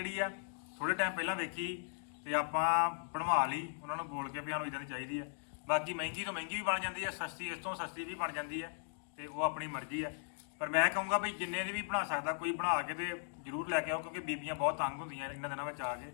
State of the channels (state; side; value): silent; right; digital silence